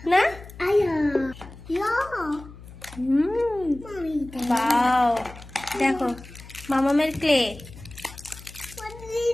না? বাও, দেখো মামামের ক্লে।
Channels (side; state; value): left; noise; hum, 17 dB below the sound